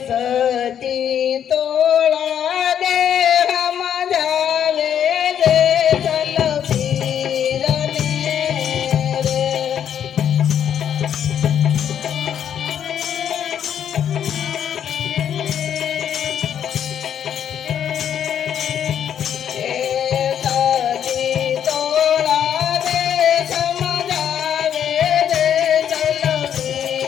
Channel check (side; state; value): right; quieter; 9.2 dB